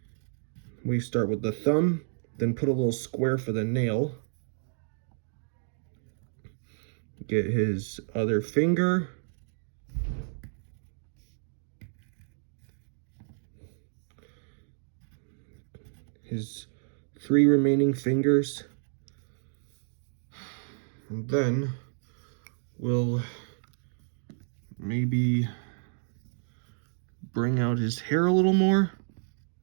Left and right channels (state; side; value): silent; left; digital silence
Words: We start with the thumb, then put a little square for the nail. Get his other finger. His 3 remaining fingers. And then we'll maybe bring out his hair a little more.